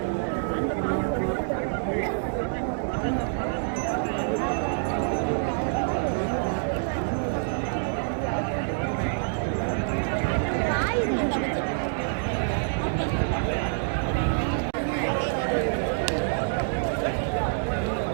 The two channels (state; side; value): silent; left; digital silence